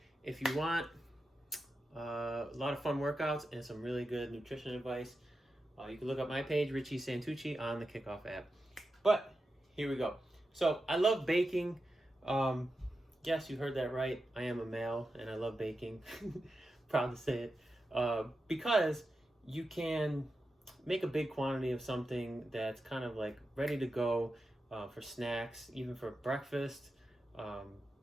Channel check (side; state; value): both; normal; correlation 0.90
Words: if you want a lot of fun workouts and some really good nutrition advice, you can look up my page, Richie Santucci, on the Kickoff app. But here we go. So, I love baking. Yes, you heard that right. I am a male and I love baking. Proud to say it. Because you can make a big quantity of something that's kind of like ready to go for snacks, even for breakfast,